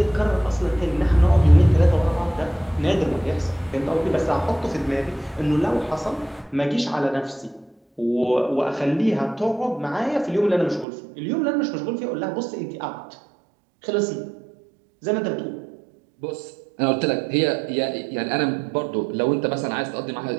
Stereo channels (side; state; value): left; drops out; at 10.9 s